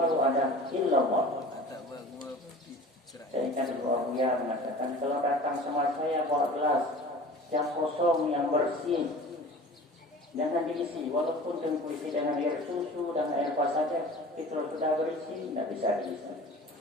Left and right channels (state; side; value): normal; both; correlation 0.40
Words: ada illallah. Saya kan dulu Buya mengatakan, kalau datang sama saya bawa gelas yang kosong, yang bersih, jangan diisi, walaupun diisi dengan air susu dan air apa saja, itu sudah berisi, tidak bisa diisi.